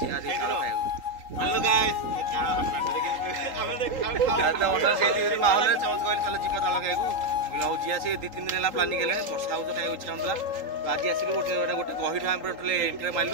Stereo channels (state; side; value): late; left; 3.8 ms